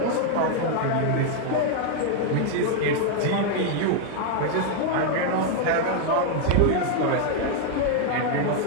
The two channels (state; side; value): different; both; correlation 0.00